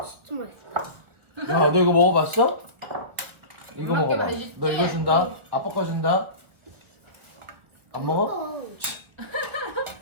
진짜 맛있다. 야, 너 이거 먹어봤어? 이거 엄마 게 먹어봐. 맛있지? 너 이거 준다. 아빠 거 준다. 안 먹어?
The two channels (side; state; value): left; late; 1.5 ms